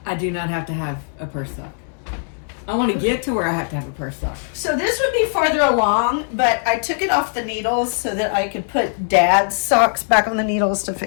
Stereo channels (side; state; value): right; silent; 66 dB below the other